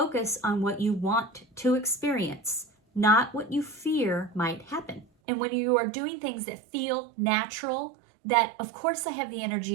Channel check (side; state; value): left; drops out; at 5.1 s